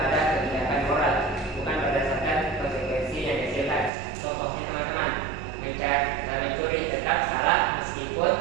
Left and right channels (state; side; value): drops out; left; at 3.9 s